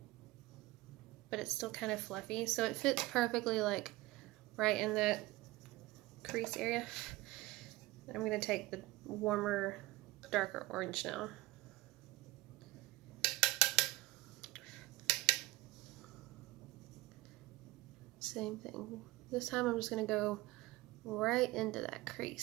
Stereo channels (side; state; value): left; quieter; 19.4 dB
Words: but it's still kind of fluffy, so it fits perfectly like right in that crease area. I'm going to take the warmer, darker orange now. Same thing. This time I'm just going to go right into that